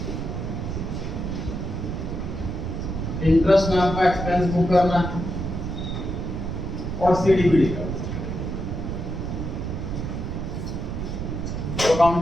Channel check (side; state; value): right; noise; rumble, 4 dB below the sound